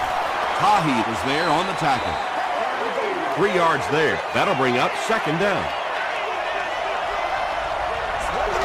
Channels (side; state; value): both; identical; correlation 1.00